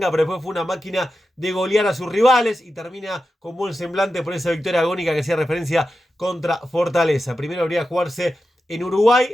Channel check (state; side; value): normal; both; correlation 0.91